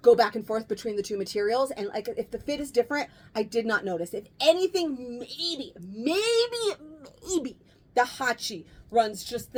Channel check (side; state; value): both; identical; correlation 1.00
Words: go back and forth between the 2 materials. And like, if the fit is different, I did not notice. If anything, maybe the hachi runs just